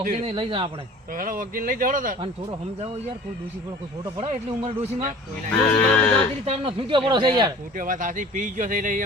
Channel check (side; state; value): both; normal; correlation 0.44